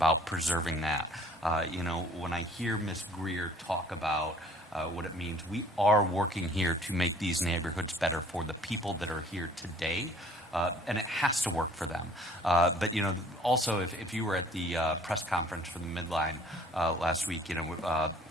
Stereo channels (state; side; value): normal; both; correlation 0.54